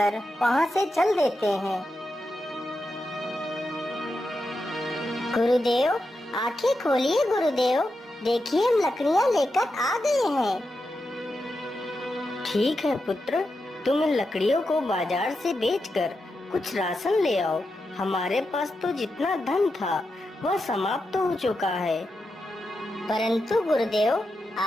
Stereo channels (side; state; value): both; normal; correlation 0.88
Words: वहाँ से चल देते हैं। गुरुदेव, आंखें खोलिए गुरुदेव, देखिए हम लकड़ियाँ लेकर आ गए हैं। ठीक है पुत्र, तुम इन लकड़ियों को बाजार से बेचकर कुछ राशन ले आओ। हमारे पास तो जितना धन था वह समाप्त हो चुका है। परंतु गुरुदेव,